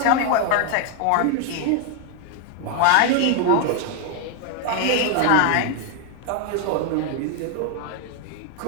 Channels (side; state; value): both; different; correlation 0.00